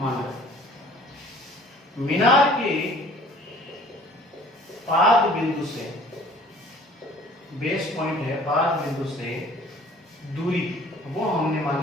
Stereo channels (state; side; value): normal; both; correlation 0.52